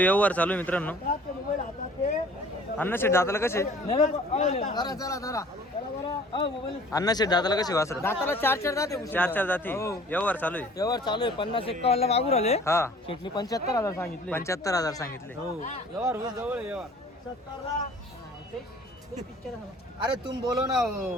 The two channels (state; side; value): normal; both; correlation 0.50